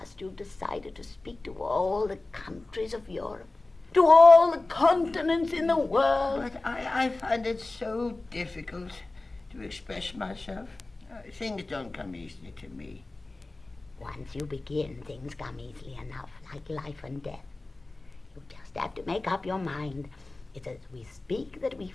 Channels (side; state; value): right; quieter; 3.1 dB